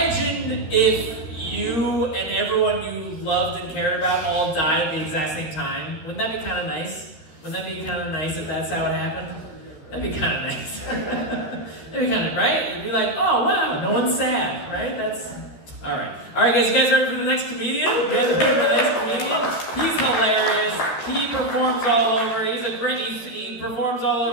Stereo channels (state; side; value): late; right; 13 ms